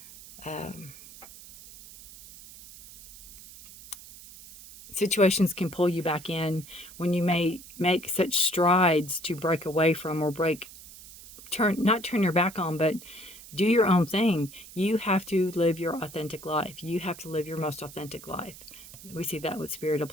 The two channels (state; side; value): noise; right; hiss, 18 dB below the sound